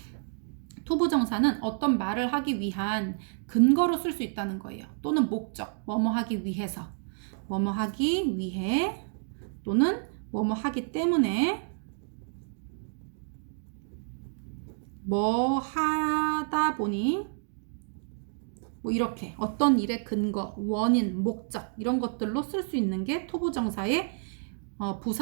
to 부정사는 어떤 말을 하기 위한 근거로 쓸 수 있다는 거예요. 또는 목적, 뭐뭐 하기 위해서, 뭐뭐 하기 위해, 또는 뭐뭐 하기 때문에, 뭐 하다 보니, 뭐 이렇게 어떤 일의 근거, 원인, 목적 이런 것들로 쓸 수 있는 게 to 부정사의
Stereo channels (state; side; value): silent; left; 58 dB below the other